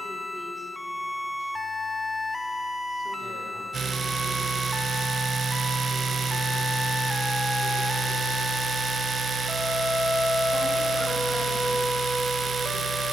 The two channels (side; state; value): both; normal; correlation 0.82